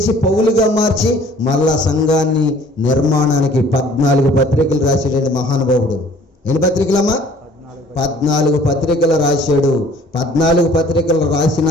పౌలుగా మార్చి మళ్ళా సంఘాన్ని నిర్మాణానికి 14 పత్రికలు రాశాడండి మహానుభావుడు. ఎన్ని పత్రికలమ్మా? 14 పత్రికలు రాశాడు. 14 పత్రికలు రాసిన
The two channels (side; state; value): both; normal; correlation 0.53